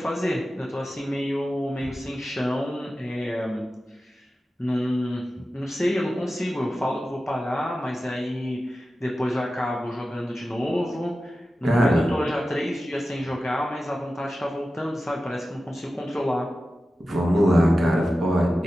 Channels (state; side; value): normal; both; correlation 0.94